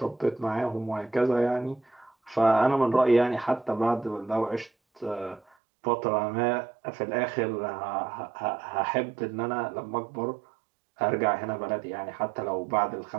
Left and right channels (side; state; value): left; drops out; at 5.4 s